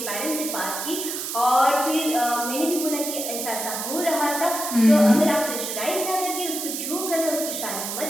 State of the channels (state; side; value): noise; right; hiss, 5 dB below the sound